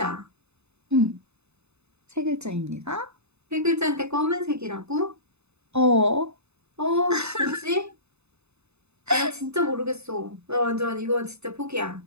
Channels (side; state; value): left; late; 0.81 ms